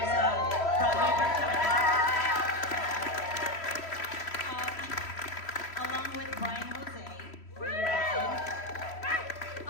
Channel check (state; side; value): late; right; 3.1 ms